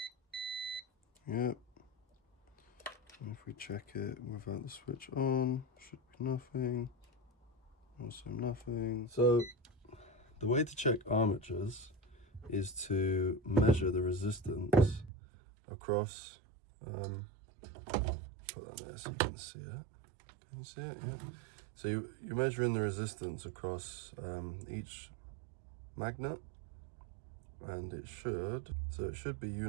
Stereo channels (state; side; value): drops out; left; at 15.1 s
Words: Yep. And if we check it without the switch on, should be nothing. Also nothing. So the way to check armatures is to measure the resistance across. Put that there so you can see it. Can you see it? Yeah. So you're measuring the resistance across each magnet, and it should be